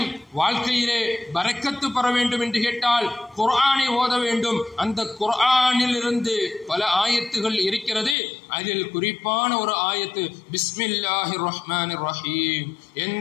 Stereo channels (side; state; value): right; drops out; at 8.2 s